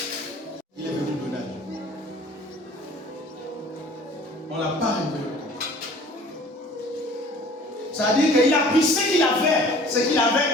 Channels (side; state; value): both; normal; correlation 0.49